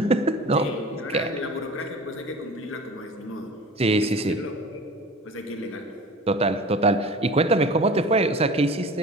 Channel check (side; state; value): both; normal; correlation 0.39